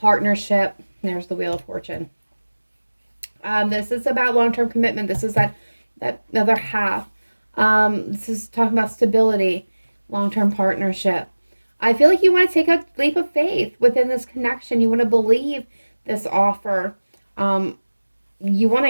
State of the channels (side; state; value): both; inverted; correlation -1.00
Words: There's the Wheel of Fortune. This is about long-term commitment. This is that other half. This is talking about stability, long-term partnership. I feel like you want to take a leap of faith within this connection. You want to believe this offer. You want to